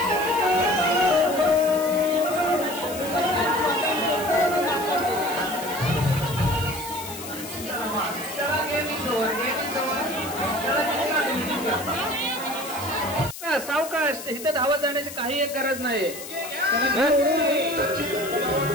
सावकाश, इथं धावत जाण्याची काही एक गरज नाही.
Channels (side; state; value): left; noise; hiss, 11 dB below the sound